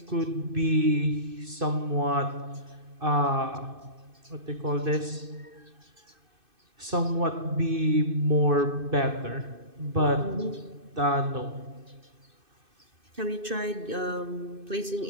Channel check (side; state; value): left; late; 2.6 ms